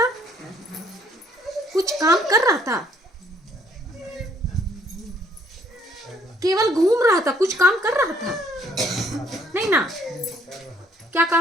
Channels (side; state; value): both; normal; correlation 0.64